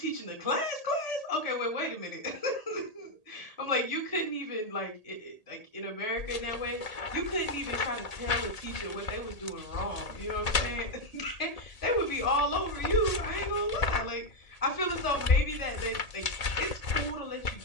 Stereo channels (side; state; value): right; late; 1.8 ms